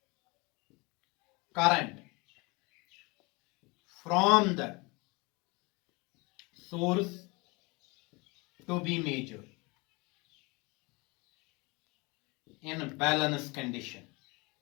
current from the source to be measured in balance condition.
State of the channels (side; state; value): right; quieter; 26.5 dB